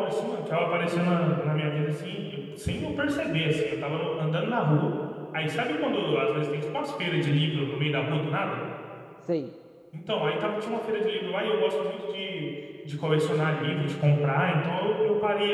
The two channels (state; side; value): identical; both; correlation 1.00